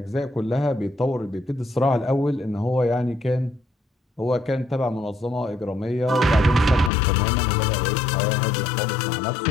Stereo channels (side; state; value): right; drops out; at 6.9 s